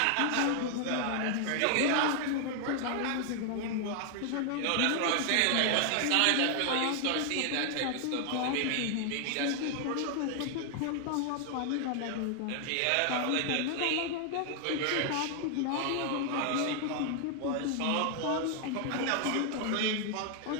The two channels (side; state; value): both; different; correlation 0.00